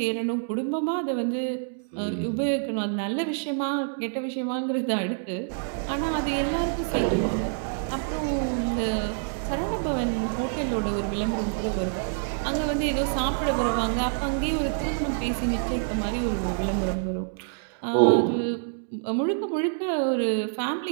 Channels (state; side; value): silent; left; digital silence